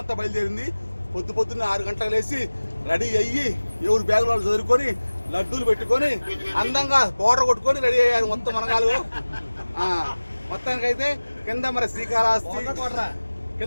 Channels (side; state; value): both; inverted; correlation -1.00